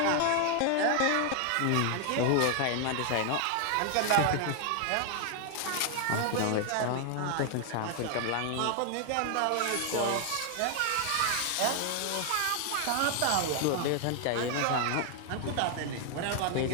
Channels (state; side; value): different; both; correlation 0.00